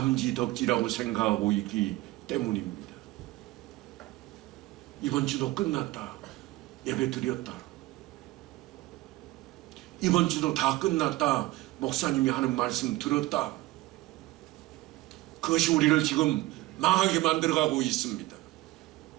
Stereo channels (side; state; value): left; quieter; 18.8 dB